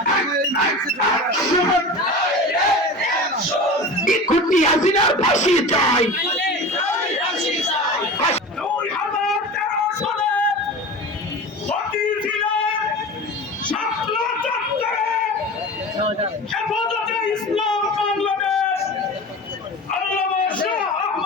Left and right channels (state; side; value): normal; both; correlation 0.32